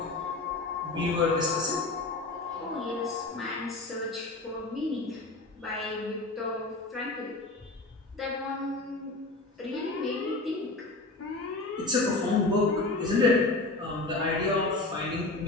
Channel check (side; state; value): right; quieter; 3.1 dB